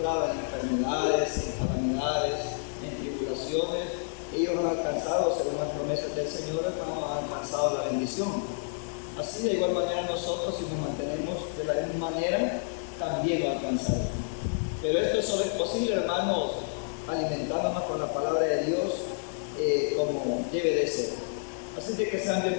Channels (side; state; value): right; silent; digital silence